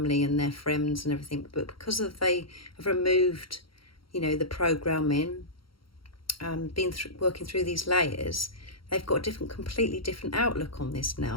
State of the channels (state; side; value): late; right; 0.74 ms